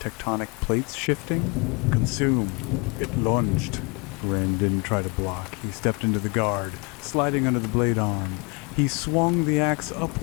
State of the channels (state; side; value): quieter; right; 30.8 dB